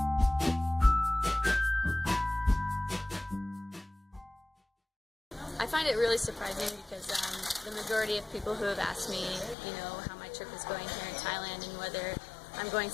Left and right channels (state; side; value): drops out; right; at 9.6 s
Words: I find it really surprising because the majority of people who have asked me, how my trip is going here in Thailand and whether I'm going